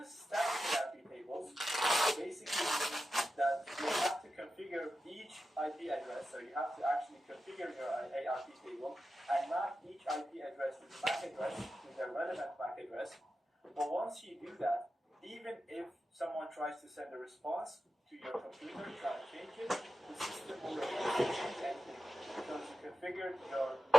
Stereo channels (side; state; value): both; normal; correlation 0.91